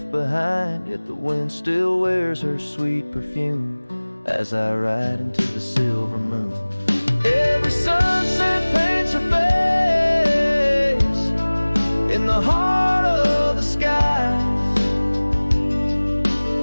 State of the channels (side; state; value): both; inverted; correlation -1.00